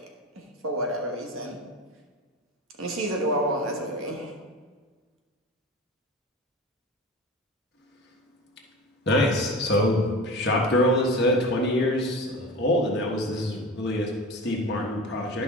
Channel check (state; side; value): normal; both; correlation 0.32